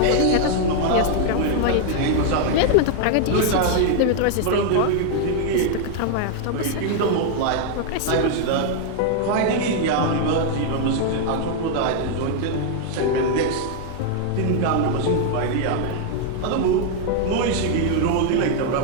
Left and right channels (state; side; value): different; both; correlation 0.00